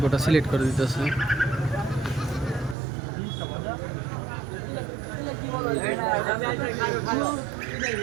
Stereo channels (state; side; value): drops out; left; at 2.8 s